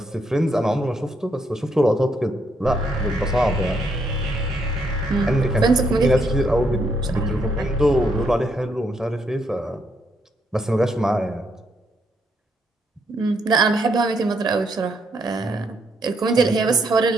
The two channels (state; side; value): normal; both; correlation 0.75